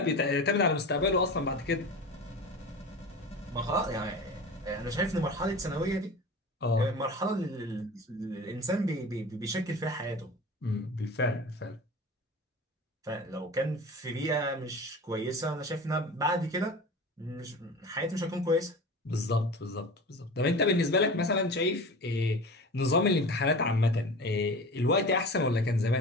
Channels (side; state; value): both; normal; correlation 0.34